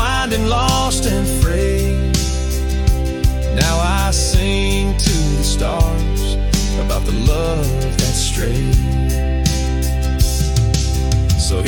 lost and frayed. Now I sing to the stars about the love that strayed. So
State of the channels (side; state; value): both; identical; correlation 1.00